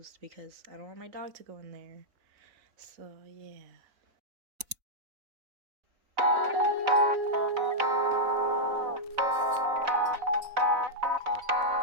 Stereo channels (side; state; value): left; late; 4.0 ms